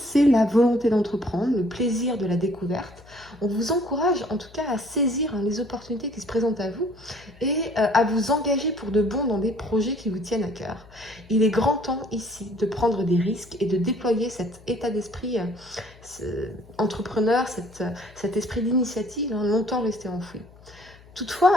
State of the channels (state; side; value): noise; left; hum, 24 dB below the sound